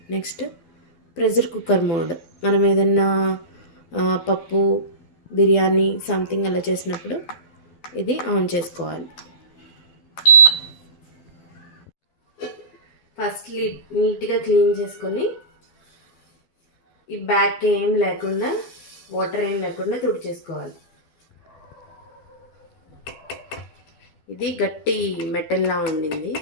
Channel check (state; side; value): late; right; 12 ms